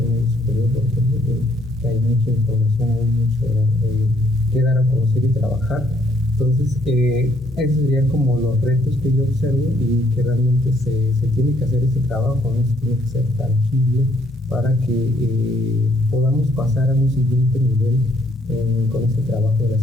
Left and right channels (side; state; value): both; normal; correlation 0.68